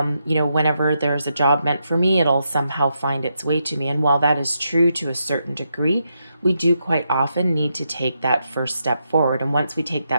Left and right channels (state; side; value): inverted; both; correlation -0.82